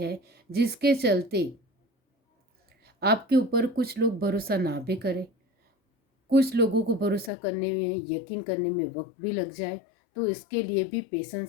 जिसके चलते आपके ऊपर कुछ लोग भरोसा ना भी करें, कुछ लोगों को भरोसा करने में, यकीन करने में वक्त भी लग जाए। तो इसके लिए भी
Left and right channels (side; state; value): right; drops out; at 7.3 s